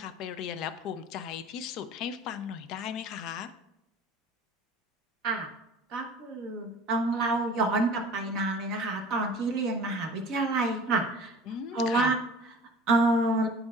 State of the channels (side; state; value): both; normal; correlation 0.43